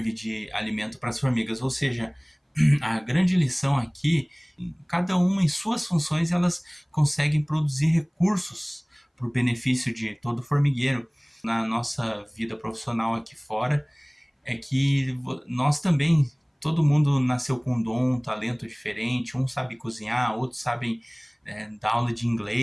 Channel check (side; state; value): both; identical; correlation 1.00